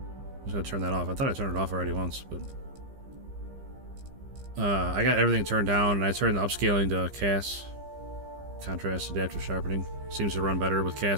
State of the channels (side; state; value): left; late; 15 ms